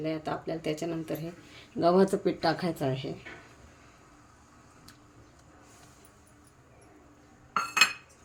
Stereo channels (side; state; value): both; identical; correlation 1.00